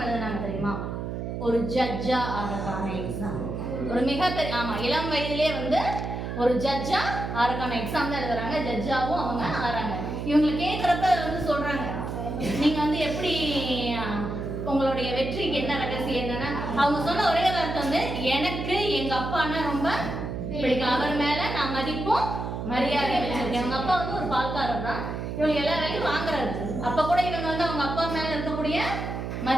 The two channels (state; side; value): noise; right; hum, 5 dB below the sound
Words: எழுதுனாங்க தெரியுமா? ஒரு ஜட்ஜா ஆகிறதுக்கான எக்ஸாம். ஒரு மிகப்பெரிய இளம் வயதிலே வந்து ஒரு ஜட்ஜா ஆகிறதுக்கான எக்ஸாம் தான் எழுதுறாங்க. ஜட்ஜாவும் அவங்க ஆறாங்க. இவங்களை கேட்குறப்ப வந்து சொல்றாங்க, நீங்க வந்து எப்படி உங்களுடைய வெற்றிக்கு என்ன ரகசியம் என்னன்னா, அவங்க சொன்ன ஒரே வார்த்தை வந்து, எனக்கு எங்க அப்பான்னா ரொம்ப பிடிக்கும், அவர் மேல நான் மதிப்பும் மரியாதையை வச்சிருக்கேன். அவங்க அப்பா வந்து ஒரு பால்காரர் தான், இவங்க எல்லா வேலையும் வாங்குறாரு. அப்ப கூட இவங்க வந்து அவங்க அப்பா மேல இருக்கக்கூடிய